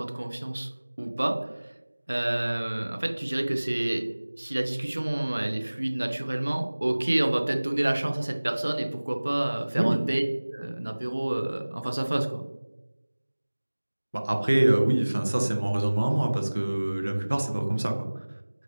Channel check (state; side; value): inverted; both; correlation -1.00